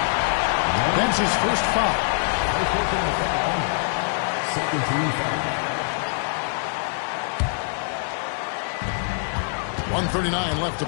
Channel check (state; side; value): silent; right; digital silence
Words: That's his first foul. Second team foul. 1:39 left to